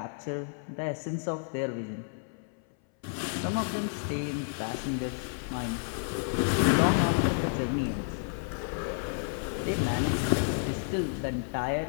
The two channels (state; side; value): silent; right; 57 dB below the other